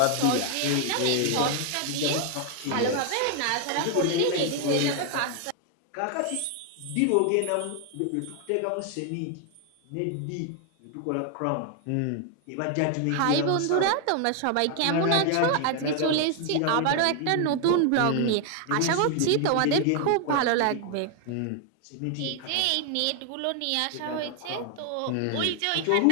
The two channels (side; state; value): both; different; correlation 0.00